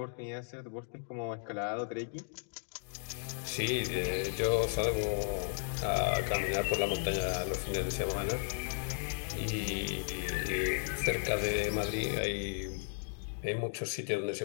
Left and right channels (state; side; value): silent; right; digital silence